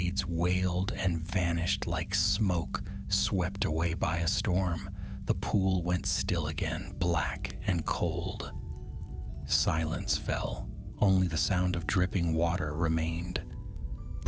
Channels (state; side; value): identical; both; correlation 1.00